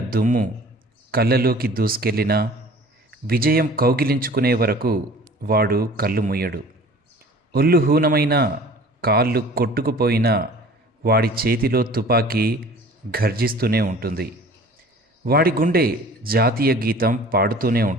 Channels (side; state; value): both; normal; correlation 0.47